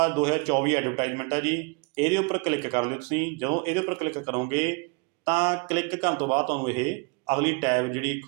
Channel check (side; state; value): left; quieter; 30.7 dB